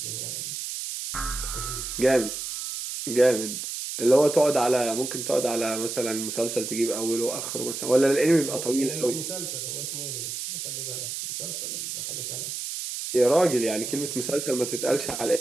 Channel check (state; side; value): noise; right; hiss, 5 dB below the sound